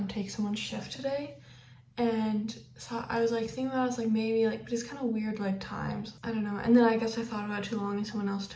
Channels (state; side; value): identical; both; correlation 1.00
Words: take someone's shift today. And so I was, like, thinking about it, I was, like, maybe, like, but it's kind of weird, like, times. I don't know. And then I guess I thought about it too long and someone else